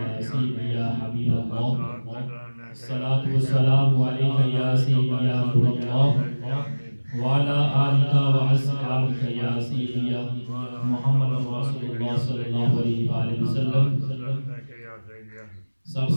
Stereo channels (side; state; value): both; inverted; correlation -1.00